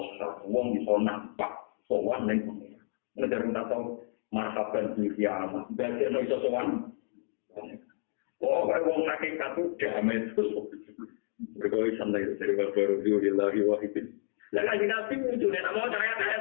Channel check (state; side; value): silent; right; digital silence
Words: wong iso nampak sowan ning dari tasawuf marhaban di kiamat. Ben iso sowan. Oh, kalau wong hakikat itu damai terus. Berkali santai dari baru di lagi wahidin. Dan lagi nabi muncul, mau